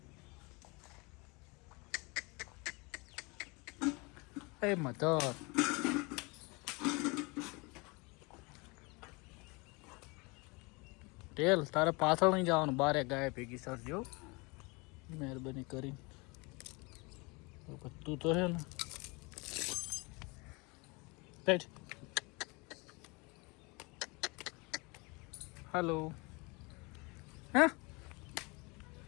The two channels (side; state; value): right; quieter; 27.6 dB